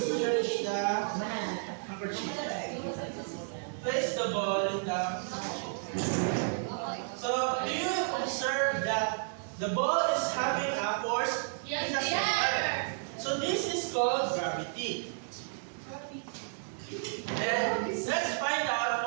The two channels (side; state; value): left; silent; digital silence